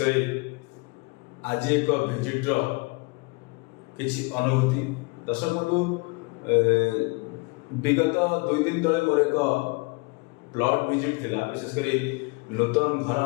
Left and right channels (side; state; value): right; quieter; 28.2 dB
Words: आज एक भिजिट्र किसी अनुभूति। दर्शक बंधु, विगत 2 दिन तले मोर एक प्लॉट विजिट थिला। विशेषकर नूतन घर